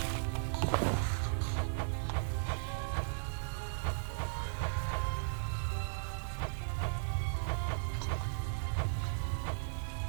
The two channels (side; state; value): left; silent; digital silence